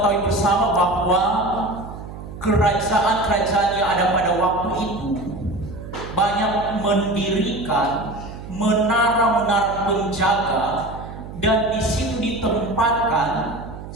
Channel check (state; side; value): noise; right; hum, 12 dB below the sound